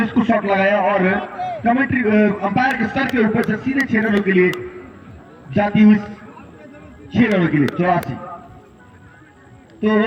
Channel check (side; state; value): both; identical; correlation 1.00